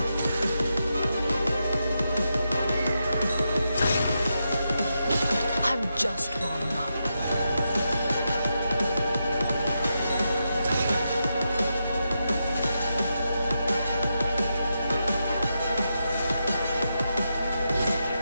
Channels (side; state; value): both; inverted; correlation -0.85